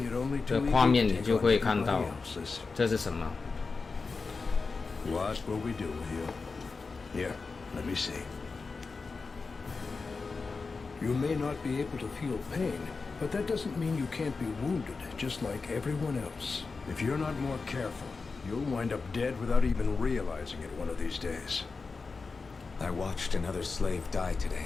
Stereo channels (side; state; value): right; quieter; 4.4 dB